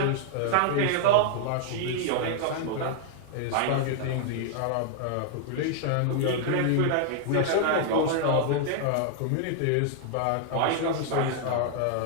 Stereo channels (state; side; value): different; both; correlation 0.00